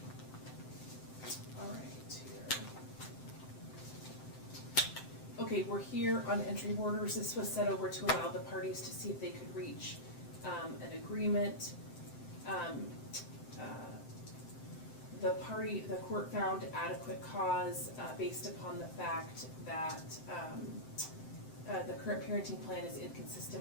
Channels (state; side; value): late; right; 7.7 ms